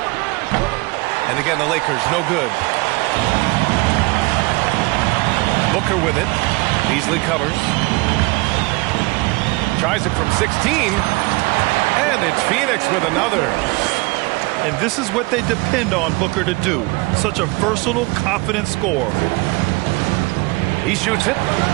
And again, the Lakers no good. Booker with it. Beasley covers. Tries it from 16. And it's Phoenix with another. And this is what they depend on Booker to do. Such a versatile, confident scorer. He shoots it.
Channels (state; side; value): quieter; left; 24.8 dB